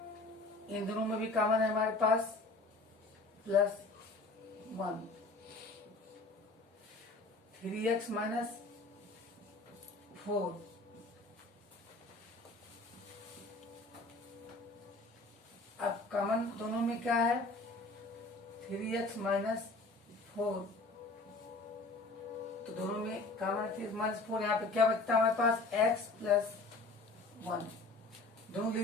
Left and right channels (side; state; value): right; quieter; 3.2 dB